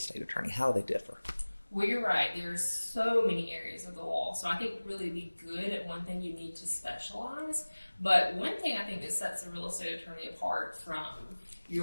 attorney? How do they differ? Well, you're right. There's so many areas of the law. So I think really to be good at one thing, you need to specialize. But one thing I think that sets a real estate attorney apart from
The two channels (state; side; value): inverted; both; correlation -1.00